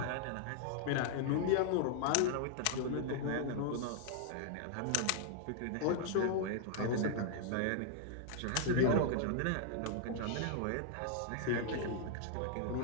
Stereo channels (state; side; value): different; both; correlation 0.00